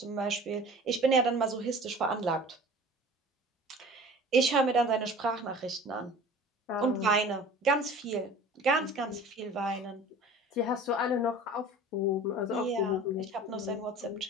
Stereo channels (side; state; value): both; normal; correlation 0.42